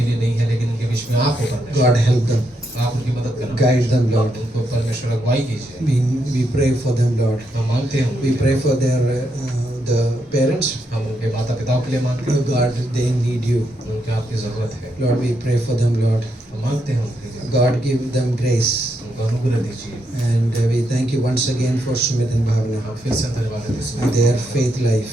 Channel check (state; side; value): normal; both; correlation 0.80